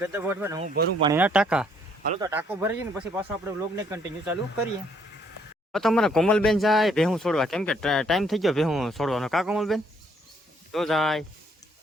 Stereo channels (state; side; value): normal; both; correlation 0.67